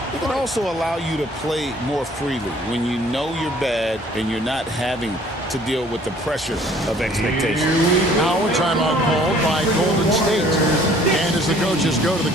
it can also allow you to play more freely when you know you're bad and you're not having to deal with the pressure of expectation. Now a timeout called by Golden State. And as the coaches go to the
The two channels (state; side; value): normal; both; correlation 0.56